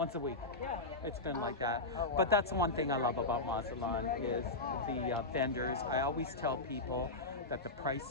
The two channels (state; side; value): quieter; right; 3.1 dB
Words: a week. It's been like that. But that's one thing I love about Mazatlan is the vendors. I always tell people that the